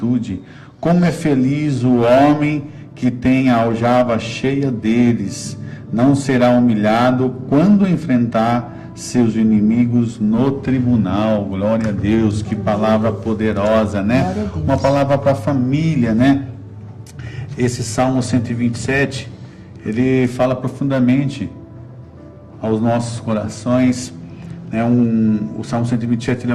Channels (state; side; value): identical; both; correlation 1.00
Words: Como é feliz o homem que tem a aljava cheia deles. Não será humilhado quando enfrentar seus inimigos no tribunal. Glória a Deus, que palavra poderosa, né? Uma palavra para a família, né? Esse Salmo 127, ele fala profundamente aos nossos corações. O Salmo 127 ele